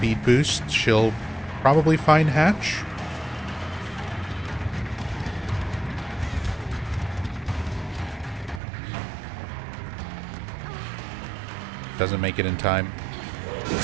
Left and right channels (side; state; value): left; drops out; at 8.6 s